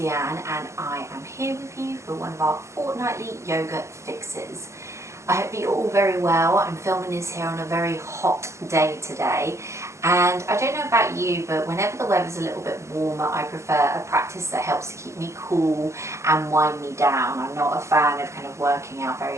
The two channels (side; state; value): left; late; 0.14 ms